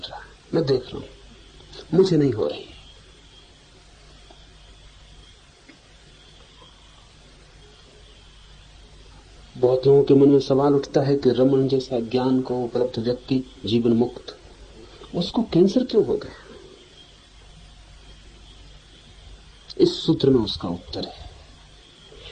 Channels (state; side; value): identical; both; correlation 1.00